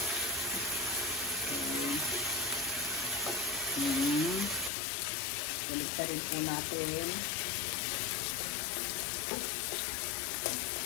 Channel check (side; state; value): right; drops out; at 4.7 s